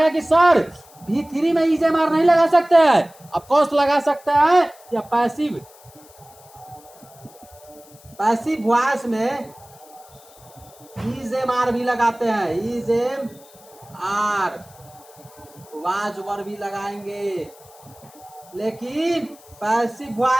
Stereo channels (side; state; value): left; noise; hiss, 25 dB below the sound